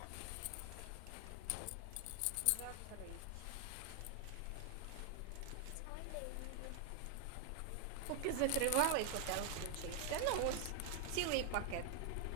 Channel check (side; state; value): both; different; correlation 0.00